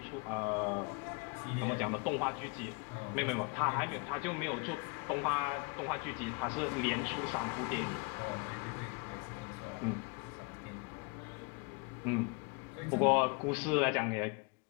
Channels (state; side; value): quieter; right; 31.5 dB